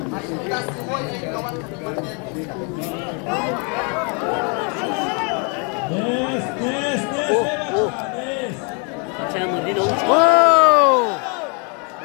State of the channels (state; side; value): quieter; right; 35.9 dB